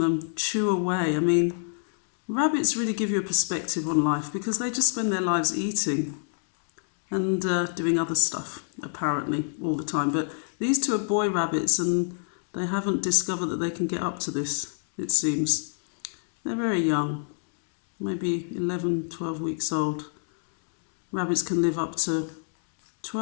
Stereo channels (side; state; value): right; silent; digital silence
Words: chew away. I mean, rabbits really give you a perspective on life because they just spend their lives eating and doing other stuff, apparently, all the time. But these two are boy rabbits and they haven't discovered that they can get up to this, it seems. They're very young, maybe 11, 12 weeks old. Rabbits can live up to